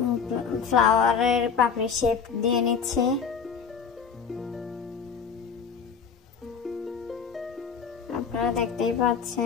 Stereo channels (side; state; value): right; quieter; 6.4 dB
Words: ফ্লাওয়ারের পাপড়ি শেপ দিয়ে নিচ্ছি। আপনারা দেখতেই